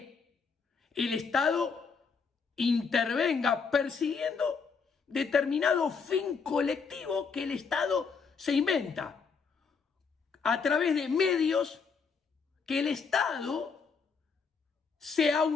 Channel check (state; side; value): quieter; right; 5.4 dB